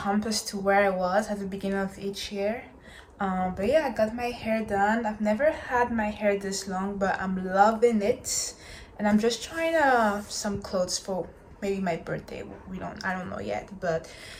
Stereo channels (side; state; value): both; identical; correlation 1.00